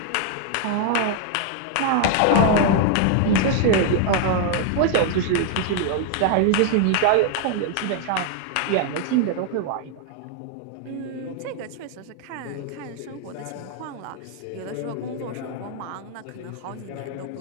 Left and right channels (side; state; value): both; different; correlation 0.00